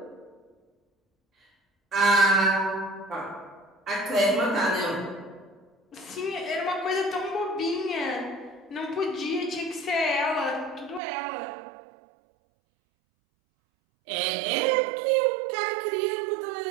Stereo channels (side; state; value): left; drops out; at 11.0 s